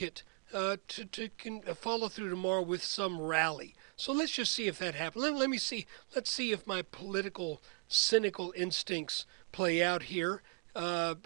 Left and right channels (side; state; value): left; quieter; 33.9 dB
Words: to follow through tomorrow with some rally. So let's just see if that happens. Let me see. Let's see if my political, cynical instincts play out here.